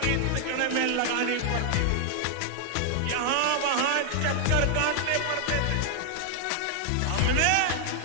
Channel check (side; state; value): both; different; correlation 0.00